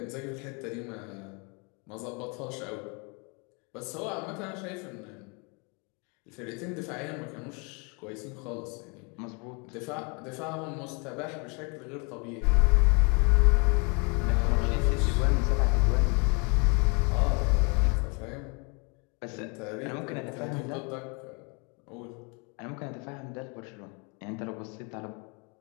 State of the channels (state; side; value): quieter; right; 32.9 dB